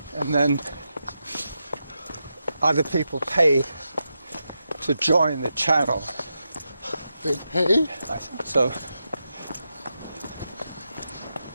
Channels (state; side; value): inverted; both; correlation -0.87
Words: and then other people pay to join the channel. they pay? I think so.